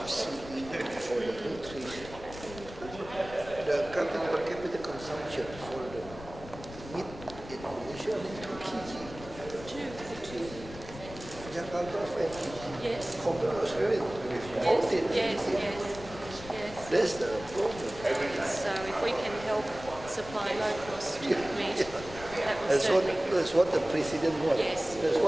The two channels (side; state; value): left; noise; rumble, 14 dB below the sound